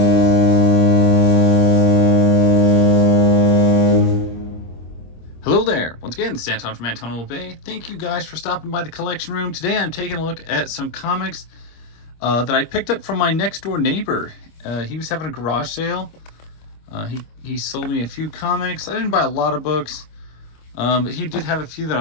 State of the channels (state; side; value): late; right; 26 ms